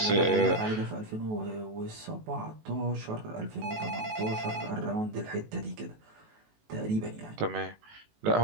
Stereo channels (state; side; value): late; left; 19 ms